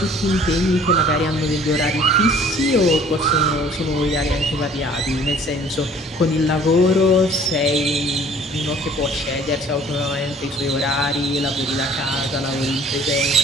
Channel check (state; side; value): normal; both; correlation 0.53